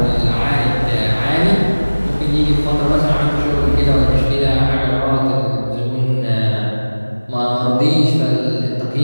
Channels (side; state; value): both; inverted; correlation -1.00